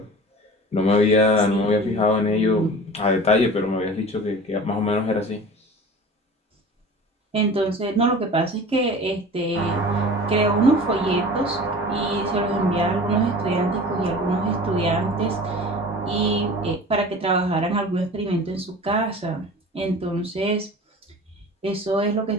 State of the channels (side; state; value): both; normal; correlation 0.39